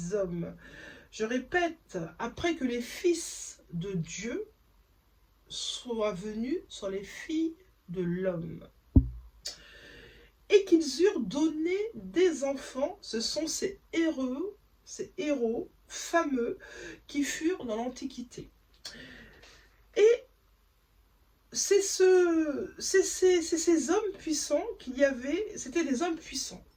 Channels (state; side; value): identical; both; correlation 1.00